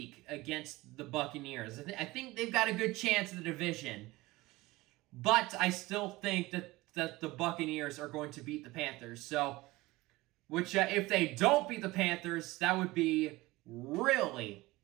against the Buccaneers. I think they've got a good chance in the division, but I still think that the Buccaneers are going to beat the Panthers. So, which if they don't beat the Panthers, that would be really,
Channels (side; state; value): left; quieter; 19.8 dB